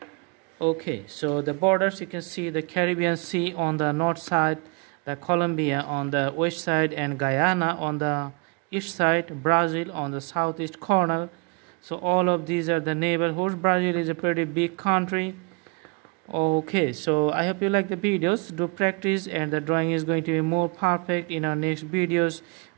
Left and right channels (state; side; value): quieter; left; 32.7 dB